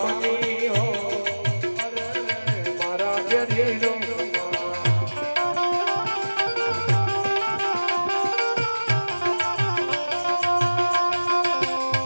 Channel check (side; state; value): both; inverted; correlation -1.00